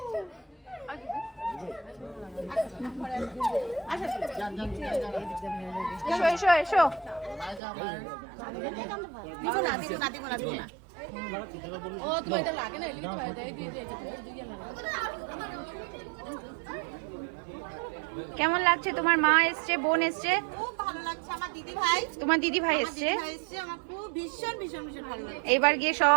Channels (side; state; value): left; drops out; at 7.6 s